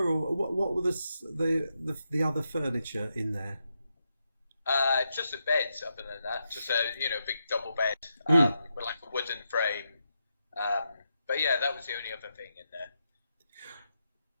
what were the other furniture in there? Just a bed. Other than that, just a big double bed with like a wooden frame. But yeah, that was the only other thing in there.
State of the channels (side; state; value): both; inverted; correlation -0.84